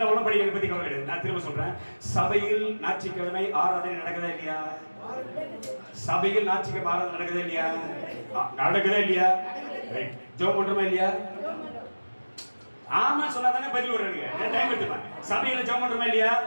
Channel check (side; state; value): both; inverted; correlation -1.00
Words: படிக்கிறத பத்தி கவலை கிடையாது. நான் திரும்ப சொல்றேன். சபையில் ஞாயிற்றுக்கிழமை ஆராதனை நடக்குதா இல்லையா? சபையில் ஞாயிற்றுக்கிழமை ஆராதனை நடக்குதா இல்லையா? நடக்குதா இல்லையா? ஜெபம் பண்றோமா இல்லையா? ஆமா சொன்னா தானே பதில் வருவாங்க. டைம் எடுத்துப்பேன். சபையில ஜெபம் பண்றோமா இல்லையா?